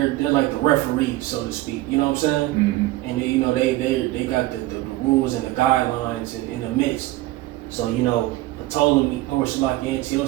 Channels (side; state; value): left; quieter; 17.5 dB